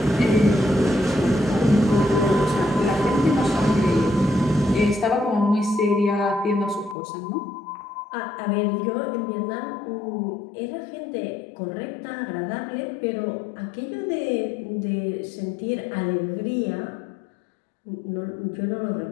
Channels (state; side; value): drops out; right; at 7.0 s